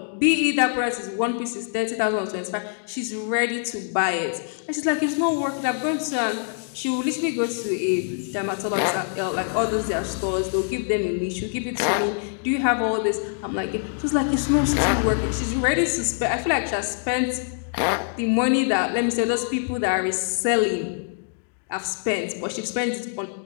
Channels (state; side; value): silent; right; digital silence